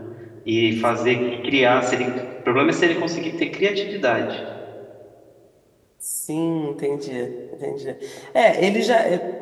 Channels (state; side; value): identical; both; correlation 1.00